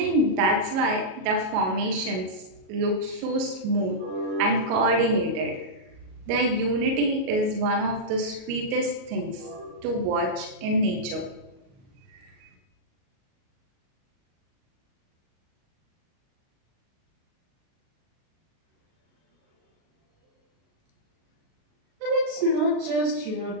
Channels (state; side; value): late; left; 38 ms